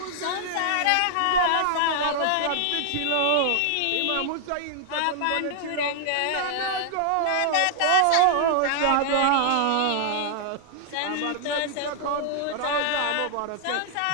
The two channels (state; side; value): different; both; correlation -0.01